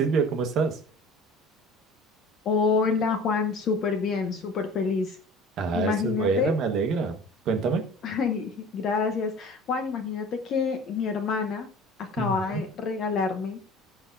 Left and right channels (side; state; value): both; normal; correlation 0.42